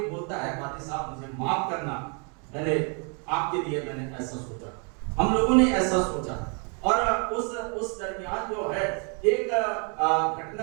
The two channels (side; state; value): left; quieter; 37.5 dB